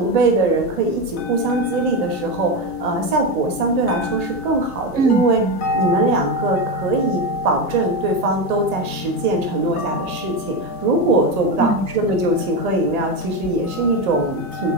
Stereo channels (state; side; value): late; left; 1.8 ms